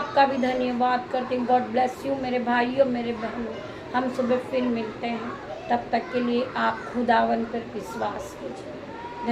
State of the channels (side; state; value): both; identical; correlation 1.00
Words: भी धन्यवाद करती हूँ। गॉड ब्लेस यू मेरे भाइयों मेरे बहनों। हम सुबह फिर मिलते हैं, तब तक के लिए आप खुदावन पर विश्वास कीजिए।